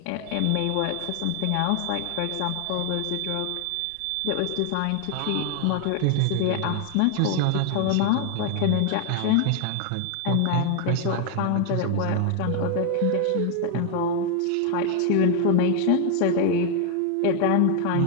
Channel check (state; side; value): different; both; correlation 0.01